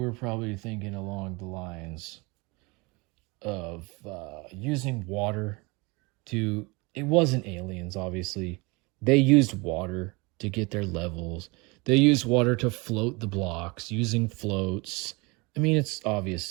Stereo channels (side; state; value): left; quieter; 26.7 dB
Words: probably thinking along the lines of using water to... It wasn't aliens, obviously. They used water to get their levels. They used water to float the blocks using floats. I mean, it's obvious